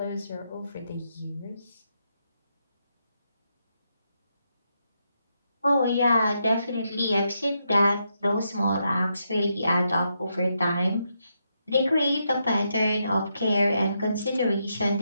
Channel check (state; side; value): inverted; both; correlation -0.82